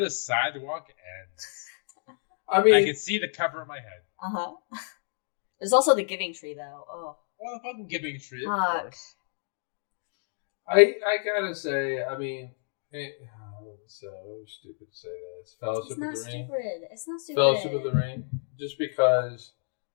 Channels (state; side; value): silent; right; digital silence